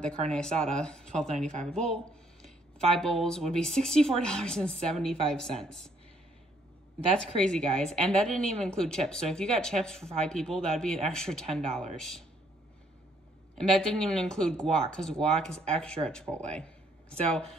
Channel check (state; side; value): normal; both; correlation 0.67